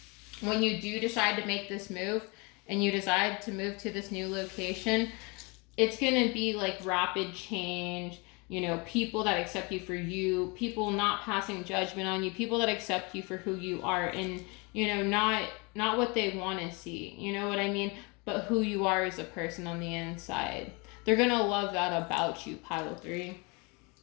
when you do decide to make this move and you decide to move to this new location, it's going to be like rapid change. You know, people that accept you for you, people not passing judgment on you, people that accept you for who you are and, you know, not what they want to see, you know what I mean? But who you are as a person on the inside. They're going to love that about you, pile 3.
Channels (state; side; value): quieter; right; 29.1 dB